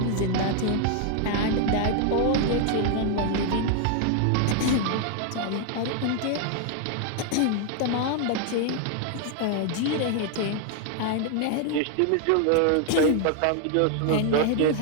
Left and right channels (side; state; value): both; different; correlation 0.00